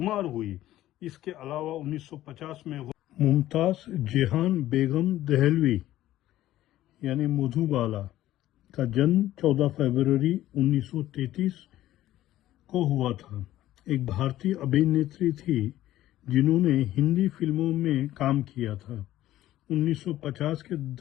हुई। इसके अलावा 1950 में मुमताज जेहान बेगम दहलवी यानी मधुबाला का जन्म 14 फरवरी 1933 को हुआ था। एक भारतीय अभिनेत्री थी जिन्होंने हिंदी फिल्मों में काम किया था। 1950 के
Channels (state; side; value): quieter; right; 14.2 dB